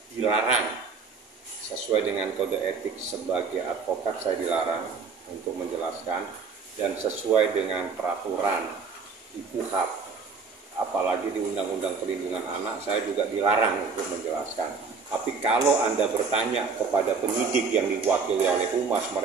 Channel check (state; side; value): quieter; left; 4.9 dB